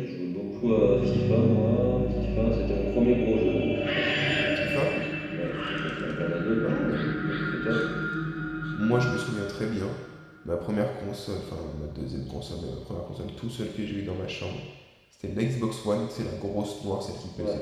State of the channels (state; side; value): identical; both; correlation 1.00